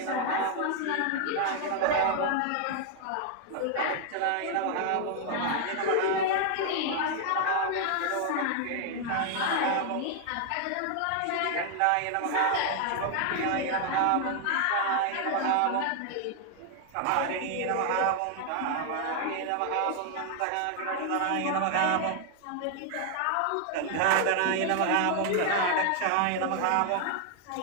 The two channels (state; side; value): different; both; correlation 0.00